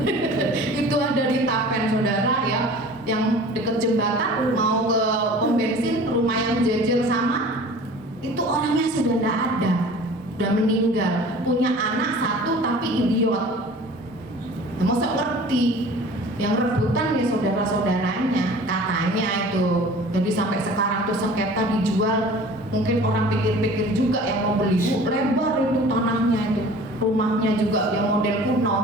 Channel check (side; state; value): both; normal; correlation 0.44